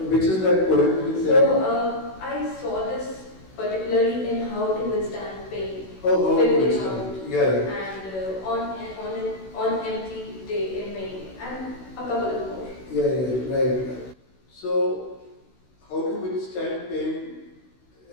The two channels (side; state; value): right; late; 16 ms